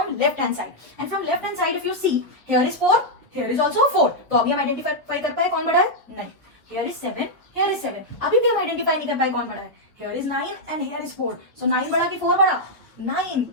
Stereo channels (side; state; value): both; normal; correlation -0.04